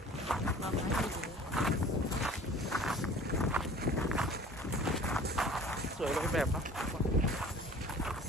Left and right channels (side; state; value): both; normal; correlation 0.46